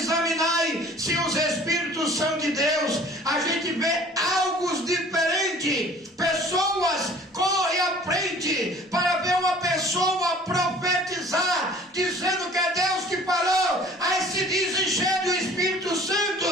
se os espíritos são de Deus. se vê algo diferente. Pessoas correm à frente para ver uma pessoa profetizar, dizendo que é Deus que falou. Aí se dizem cheio do Espírito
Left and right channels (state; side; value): normal; both; correlation 0.50